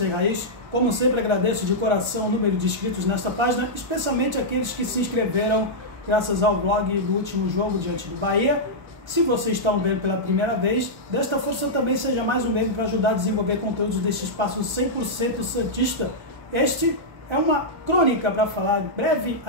Raiz. Como sempre agradeço de coração o número de inscritos nesta página, especialmente aqueles que se inscreveram graças ao vlog do último jogo diante do Bahia. Se vocês estão vendo pela primeira vez, desta força também seja mais um meio para ajudar a desenvolver conteúdos desse espaço 100% santista. Este é uma crônica para falar, breve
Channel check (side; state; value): left; late; 1.3 ms